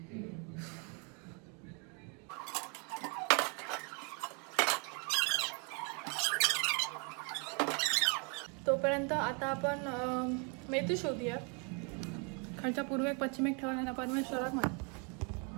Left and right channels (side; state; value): left; quieter; 35.1 dB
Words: तोपर्यंत आता आपण मेथी शोधूया. खालच्या पूर्वेक पश्चिमेक ठेवला परमेश्वराक माहिती.